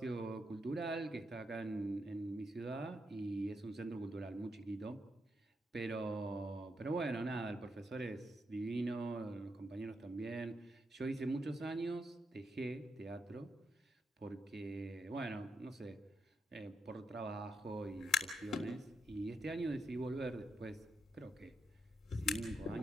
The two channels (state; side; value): normal; both; correlation 0.81